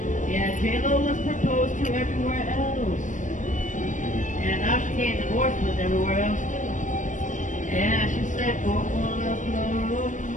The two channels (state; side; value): late; right; 0.37 ms